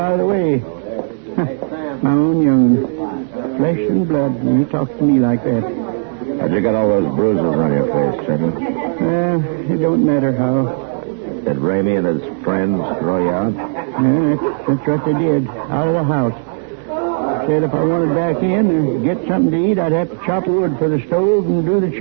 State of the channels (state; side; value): silent; left; digital silence